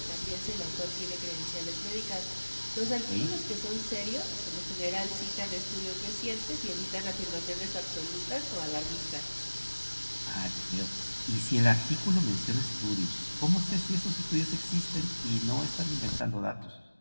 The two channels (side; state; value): both; inverted; correlation -1.00